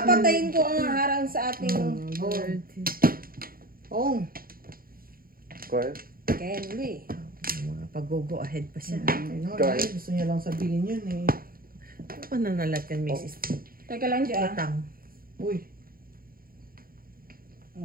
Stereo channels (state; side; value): late; left; 0.42 ms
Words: ko ang harang sa ating Oh. Kaya? Kenley. Mga pag-go ahead pa siya. Gusto niya lang sabihin yun eh. Ano pa nanalat yan, Mrs. Teka lang dyan. Utang. Uy.